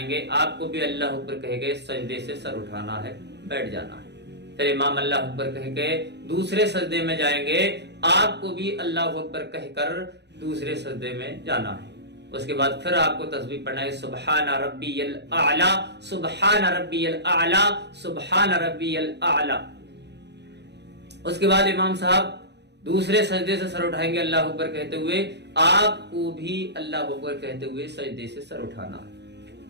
گے، آپ کو بھی اللہ اکبر کہہ کے سجدے سے سر اٹھانا ہے، بیٹھ جانا ہے۔ پھر امام اللہ اکبر کہہ کے دوسرے سجدے میں جائیں گے، آپ کو بھی اللہ اکبر کہہ کر دوسرے سجدے میں جانا ہے۔ اس کے بعد پھر آپ کو تسبیح پڑھنا ہے سبحان ربی الاعلی سبحان ربی الاعلی سبحان ربی الاعلی۔ اس کے بعد امام صاحب دوسرے سجدے سے سر اٹھائیں گے اللہ اکبر کہتے ہوئے، آپ کو بھی اللہ اکبر کہتے ہوئے سجدے سے سر اٹھانا ہے۔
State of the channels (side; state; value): left; late; 0.50 ms